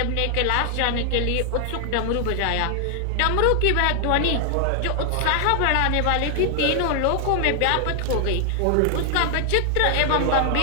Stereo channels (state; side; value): different; both; correlation 0.00